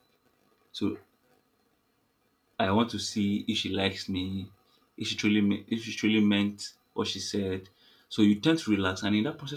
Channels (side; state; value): both; identical; correlation 1.00